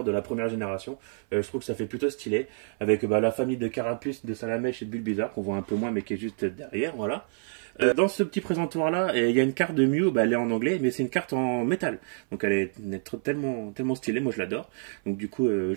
de la première génération. Je trouve que ça fait plutôt stylé. Avec la famille de Carapuce, de Salamèche et de Bulbizarre, qu'on voit un peu moins mais qui est juste derrière, voilà. Dans ce petit présentoir là, il y a une carte de Mew, elle est en anglais, mais c'est une carte en métal. Donc elle est tellement stylée, moi je l'adore. Donc du coup je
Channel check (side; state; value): left; silent; 58 dB below the other